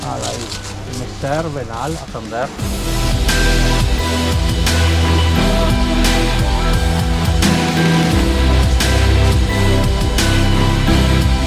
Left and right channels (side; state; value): both; identical; correlation 1.00